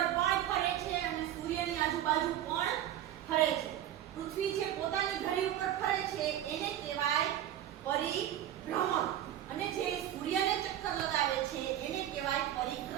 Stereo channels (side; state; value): left; quieter; 11.7 dB